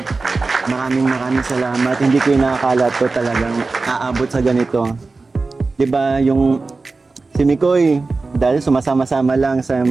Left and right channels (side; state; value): left; quieter; 3.8 dB